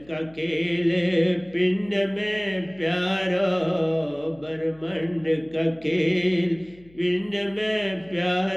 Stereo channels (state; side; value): noise; left; hum, 27 dB below the sound